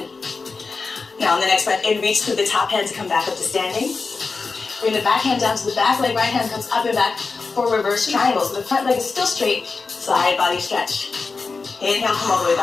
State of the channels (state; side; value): quieter; right; 4.4 dB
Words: Now on the next breath in, reach through the top hand to come back up to standing. Bring the back hand down to the back leg, right hand comes up and back for reverse triangle. So the front leg is still straight, side body stretch. Inhale, come all the way